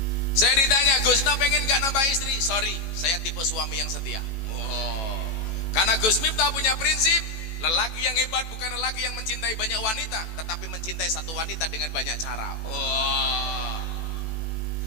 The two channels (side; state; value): right; late; 18 ms